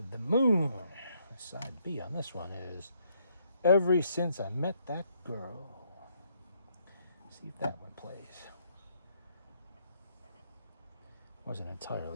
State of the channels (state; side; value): inverted; both; correlation -0.71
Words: moon. Side B on this one is Ever Since I Met That Girl. See if that one plays. Wasn't